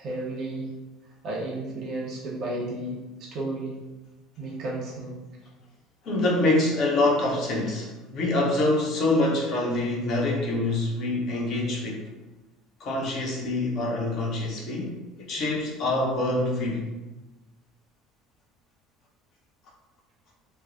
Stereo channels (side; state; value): both; normal; correlation 0.46